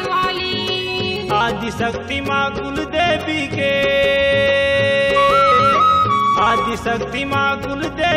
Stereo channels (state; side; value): identical; both; correlation 1.00